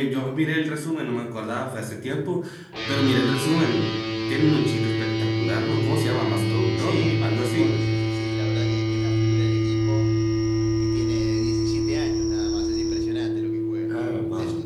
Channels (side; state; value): both; identical; correlation 1.00